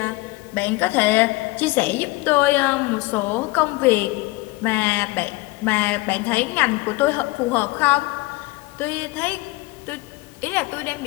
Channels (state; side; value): quieter; right; 21.7 dB